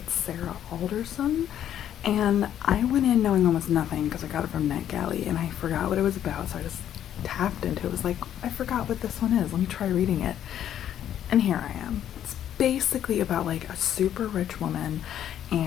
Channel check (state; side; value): quieter; right; 10.6 dB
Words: Sarah Alderson, and I went in knowing almost nothing because I got it from NetGalley, and I forgot what it was about, so I just tapped into it. It was like, I forgot what this one is, let me try reading it. And here I am. It's basically about like a super rich woman,